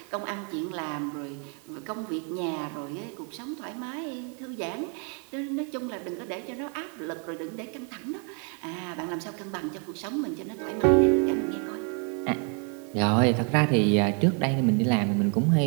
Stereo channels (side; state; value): left; quieter; 38.8 dB